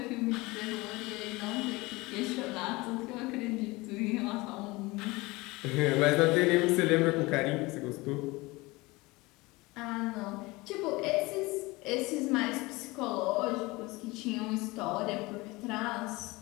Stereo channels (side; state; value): right; quieter; 22.5 dB